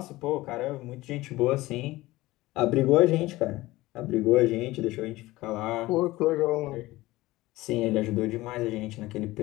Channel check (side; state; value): right; quieter; 18.7 dB